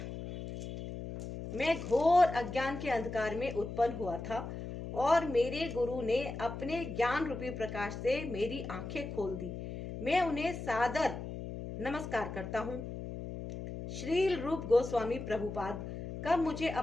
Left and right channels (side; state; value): left; noise; hum, 8 dB below the sound